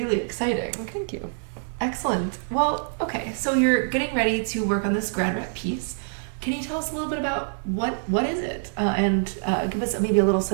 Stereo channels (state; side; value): silent; left; 61 dB below the other